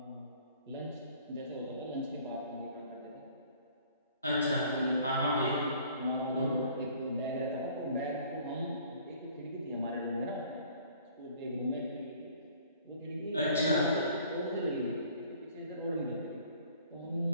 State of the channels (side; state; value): both; inverted; correlation -0.54